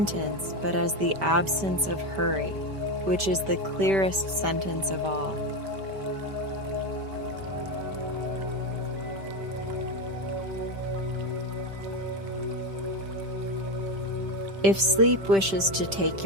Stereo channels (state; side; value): late; left; 5.1 ms